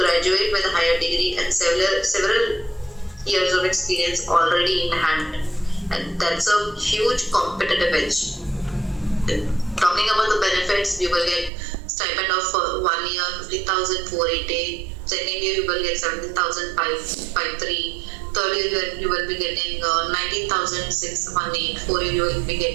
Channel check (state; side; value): drops out; left; at 11.5 s